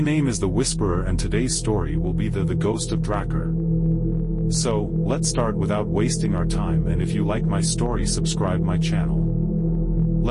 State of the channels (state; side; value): identical; both; correlation 1.00